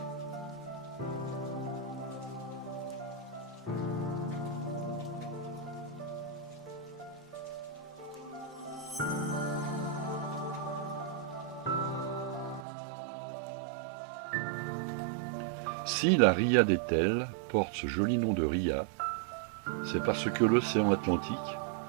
Si la ria d'Etel porte ce joli nom de ria, c'est parce que l'océan Atlantique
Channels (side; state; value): left; drops out; at 12.7 s